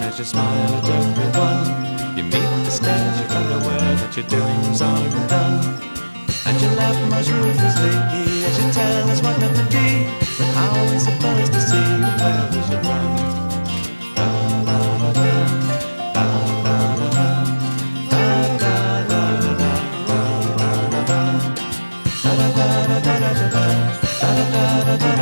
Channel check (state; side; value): inverted; both; correlation -1.00